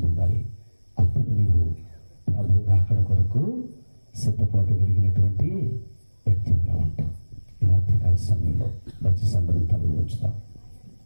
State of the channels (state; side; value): inverted; both; correlation -1.00